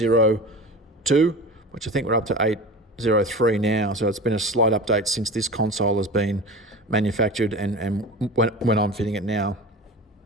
which I think we're up to 803 now. So it's been a slight update since this console has been manufactured and when I'm fitting it now.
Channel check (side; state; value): both; normal; correlation 0.33